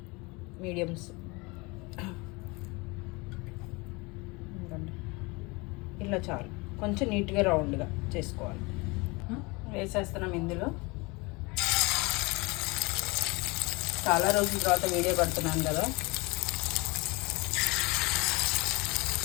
మీడియంస్ ఇలా చాలు. కొంచెం నీట్గా రౌండ్గా చేసుకోవాలి. వేసేస్తున్నాం ఇందులో. చాలా రోజుల తర్వాత వీడియో పడుతున్నాను కదా.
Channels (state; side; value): quieter; right; 26.1 dB